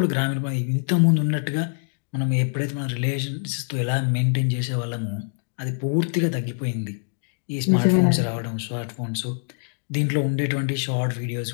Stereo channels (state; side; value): silent; right; 60 dB below the other